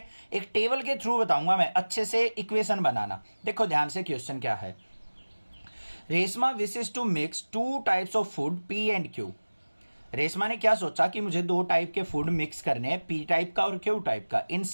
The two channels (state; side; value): inverted; both; correlation -1.00